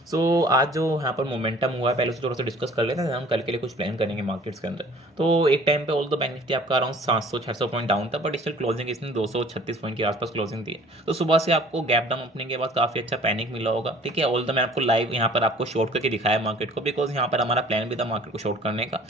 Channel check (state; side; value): normal; both; correlation 0.51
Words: सो आज जो यहाँ पर मोमेंटम हुआ है पहले से थोड़ा सा डिस्कस कर लेते हैं, हम कल के लिए कुछ प्लान करेंगे मार्केट्स के अंदर। तो एक टाइम पे ऑल द बैंक निफ्टी आपका अराउंड 700-600 पॉइंट डाउन था, बट स्टिल क्लोजिंग इसने 236 पॉइंट के आसपास क्लोजिंग दी है। तो सुबह से आपको गैप डाउन ओपनिंग के बाद काफ़ी अच्छा पैनिक मिला होगा, ठीक है। ऑल द मैं आपको लाइव यहाँ पर आपको शॉर्ट करके दिखाया मार्केट को, बिकॉज यहाँ पर हमारा प्लान भी था मार्केट को शॉर्ट करने का।